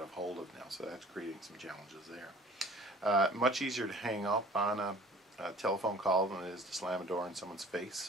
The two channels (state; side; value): normal; both; correlation 0.49